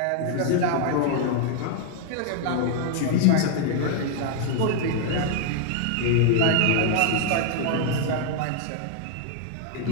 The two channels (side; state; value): both; different; correlation 0.00